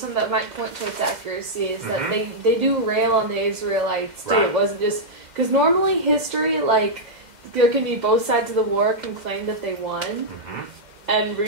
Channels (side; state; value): left; late; 2.1 ms